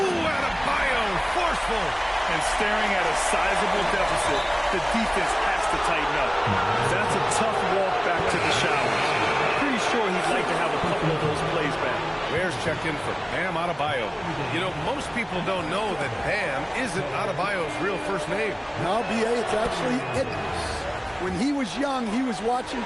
Adebayo! Forceful! And staring at a sizable deficit, the defense has to tighten up. That's a tough walk back to the showers. Pretty sure he'd like to have a couple of those plays back. Bears checked in for Bam Adebayo. You know, most people don't know that Bam isn't Adebayo's real first name. Now, B.A., it's actually Idris. When he was young, he was watching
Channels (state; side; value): identical; both; correlation 1.00